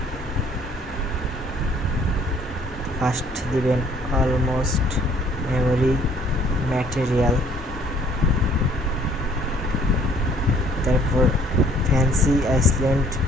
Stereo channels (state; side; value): normal; both; correlation 0.59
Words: ফার্স্ট দিবেন অলমোস্ট মেমোরি ম্যাটেরিয়াল, তারপর fancy Iceland